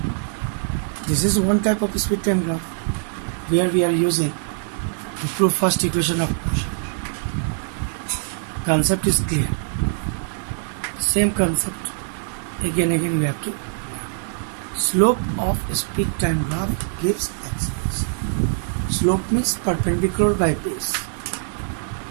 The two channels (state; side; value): silent; left; digital silence